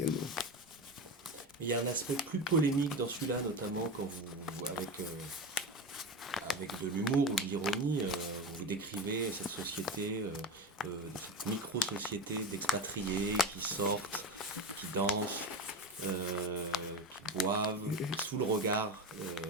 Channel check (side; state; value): both; normal; correlation 0.22